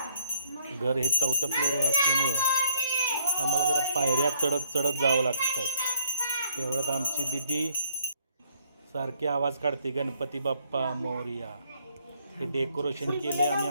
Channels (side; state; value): both; inverted; correlation -0.64